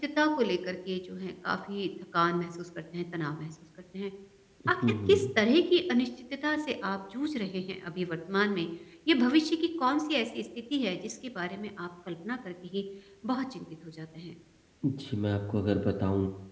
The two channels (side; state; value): both; identical; correlation 1.00